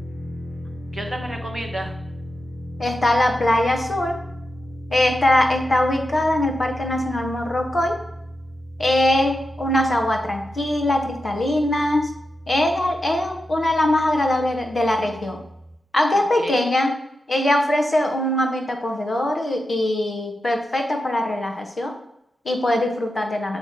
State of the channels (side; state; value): both; normal; correlation 0.89